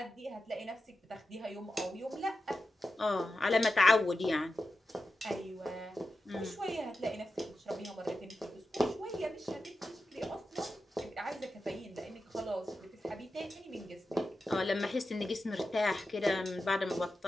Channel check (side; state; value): both; normal; correlation 0.91